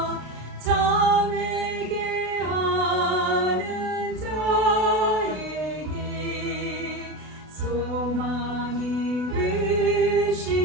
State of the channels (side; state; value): left; late; 32 ms